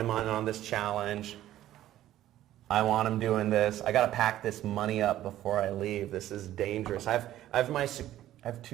on this challenge. I want him doing this. I got to pack this money up before I leave. This is dangerous. I have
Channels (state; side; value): quieter; left; 13.4 dB